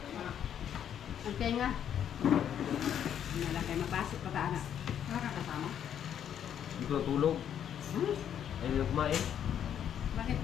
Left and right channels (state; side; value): quieter; right; 9.3 dB